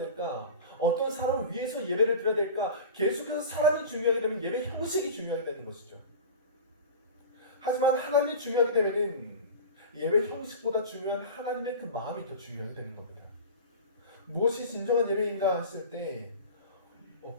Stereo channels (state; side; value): inverted; both; correlation -0.33